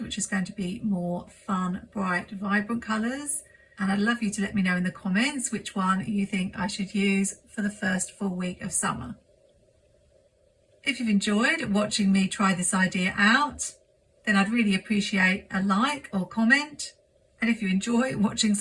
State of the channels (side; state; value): both; identical; correlation 1.00